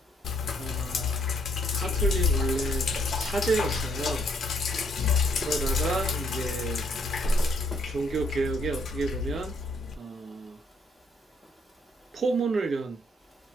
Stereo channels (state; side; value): normal; both; correlation 0.69